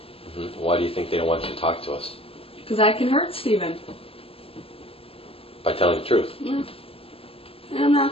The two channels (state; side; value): late; right; 0.27 ms